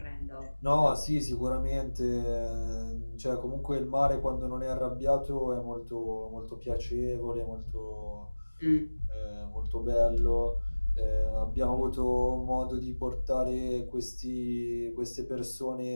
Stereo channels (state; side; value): inverted; both; correlation -1.00